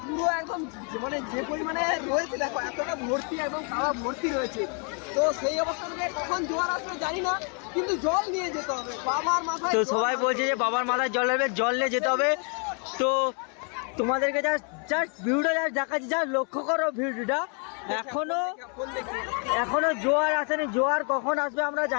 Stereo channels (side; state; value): right; quieter; 38.8 dB